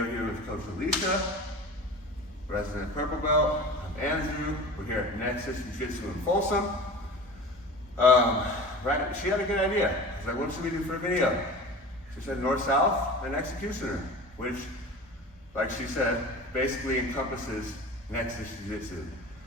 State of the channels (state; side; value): normal; both; correlation 0.36